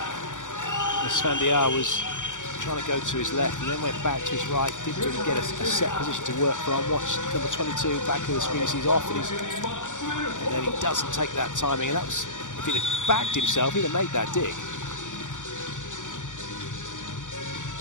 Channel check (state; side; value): late; right; 0.86 ms